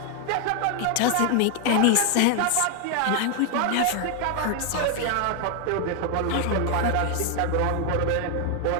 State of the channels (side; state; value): both; different; correlation 0.00